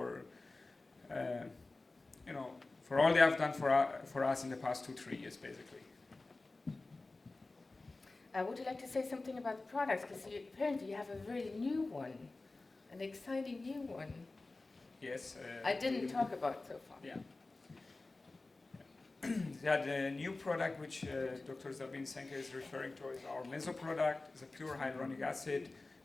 for all they have done for us in the past 2-3 years, basically. Would you like to say something about the products? Because apparently you have a very new one, an exciting new one. Yes. I didn't talk about so far. Yeah. The new product which Dr. Sabine Zenker is referring to is our Meso product. It's a pure hyaluronic acid.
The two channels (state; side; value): quieter; right; 3.3 dB